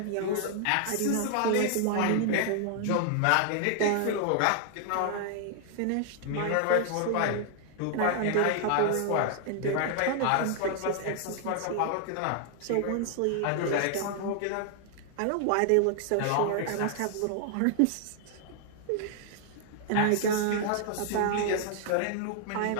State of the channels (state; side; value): different; both; correlation 0.00